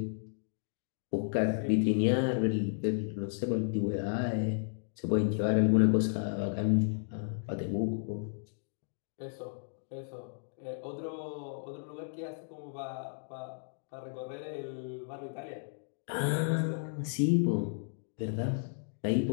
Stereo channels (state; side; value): silent; right; digital silence